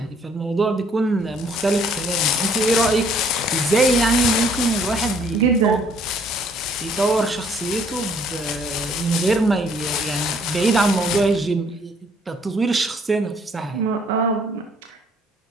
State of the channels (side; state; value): both; normal; correlation 0.62